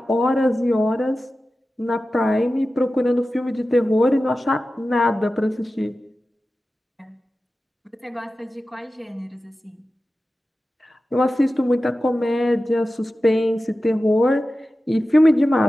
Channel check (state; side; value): normal; both; correlation 0.94